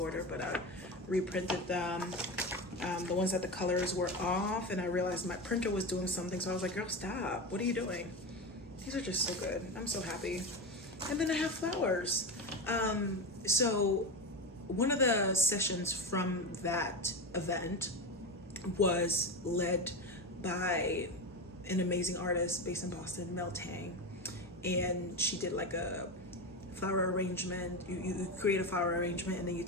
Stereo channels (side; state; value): both; normal; correlation 0.20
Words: but I reprinted them. The ones that the colors were off, and I realized my printer was doing something, so I was like, girl, stop. What are you doing? These are just so good. I'm so happy. And then I have flowers. So one of the sessions from that event was led by an amazing artist based in Boston, Mel Tang, and she did like a flower arrangement. You create a flower arrangement and then you